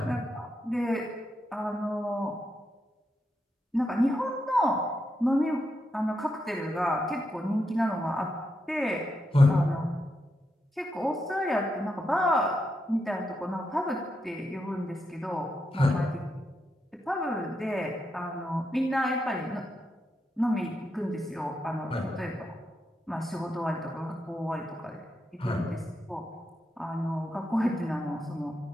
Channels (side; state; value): both; normal; correlation 0.84